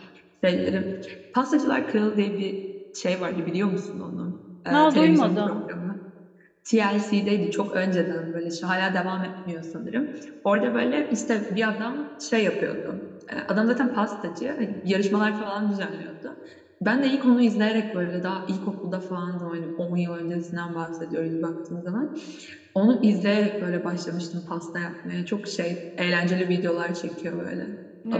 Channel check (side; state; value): both; identical; correlation 1.00